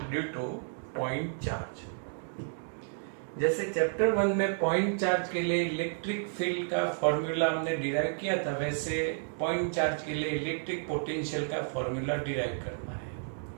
due to point charge. जैसे चैप्टर 1 में पॉइंट चार्ज के लिए इलेक्ट्रिक फील्ड का फॉर्मूला हमने डिराइव किया था, वैसे पॉइंट चार्ज के लिए इलेक्ट्रिक पोटेंशियल का फॉर्मूला डिराइव करना है।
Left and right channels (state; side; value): silent; left; digital silence